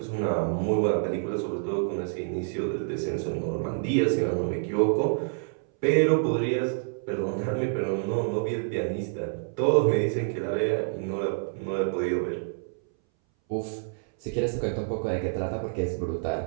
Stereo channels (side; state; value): left; silent; 60 dB below the other